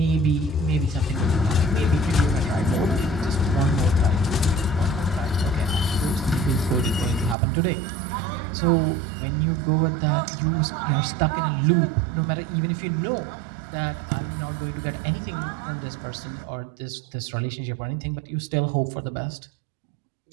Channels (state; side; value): drops out; left; at 7.4 s